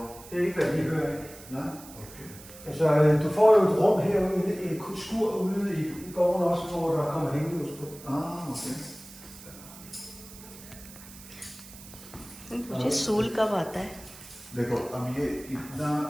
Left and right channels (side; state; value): right; noise; hiss, 18 dB below the sound